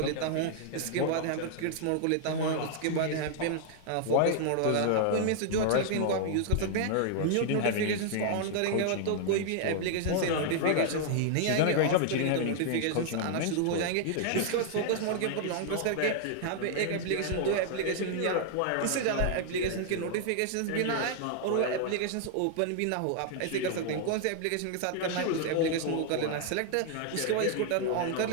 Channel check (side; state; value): both; different; correlation 0.00